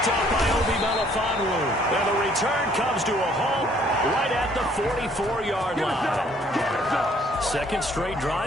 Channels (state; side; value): normal; both; correlation 0.62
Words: up by Obi Melifonwu. And the return comes to a halt right at the 44-yard line. Second straight